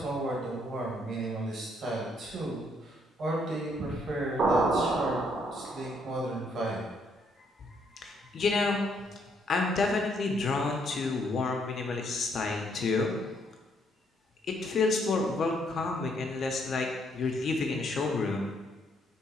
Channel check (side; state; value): both; normal; correlation 0.71